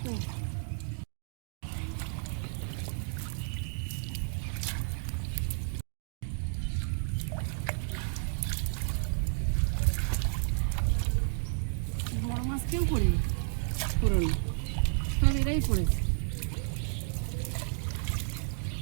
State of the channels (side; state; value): left; silent; 57 dB below the other